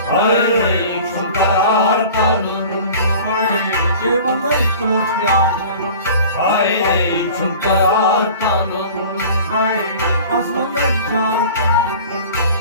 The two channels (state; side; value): inverted; both; correlation -0.42